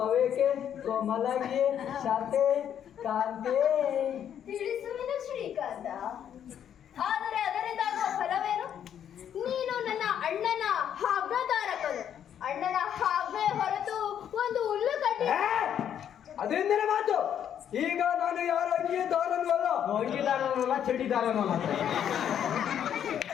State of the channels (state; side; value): quieter; right; 9.4 dB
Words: ಕೋಮಲಗೆ ಶಾಂತೆ ಕಾಂತೆ. ತಿಳಿಸುವಿನ ಶ್ರೀಕಾಂತ, ಆದರೆ ಅದರಿಂದಾಗುವ ಫಲವೇನು? ನೀನು ನನ್ನ ಅಣ್ಣನ ಆಜ್ಞಾಧಾರಕನು. ಅಣ್ಣನ ಆಜ್ಞೆ ಹೊರತು ಒಂದು ಹುಲ್ಲು ಕಡ್ಡಿ. ಅದೆಂದಿನ ಮಾತು? ಈಗ ನಾನು ಯಾರ ಅಂಗೀದಾರನೂ ಅಲ್ಲ. ಅಂಗೀದಾರನಲ್ಲ, ಚಡಿದಾರನೂ ಅಲ್ಲ.